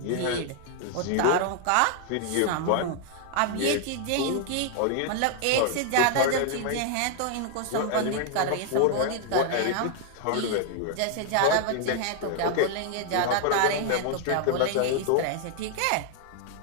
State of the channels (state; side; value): different; both; correlation 0.00